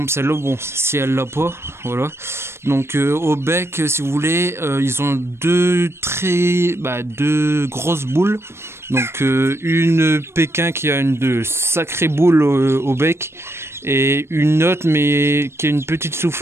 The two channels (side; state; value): left; late; 0.12 ms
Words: celle-là, bon si elle l'a pas, voilà. Donc au bec, si vous voulez, ils ont deux grosses boules. Donc une Pékin qui a de sacrées boules au bec et une autre mais qui a une petite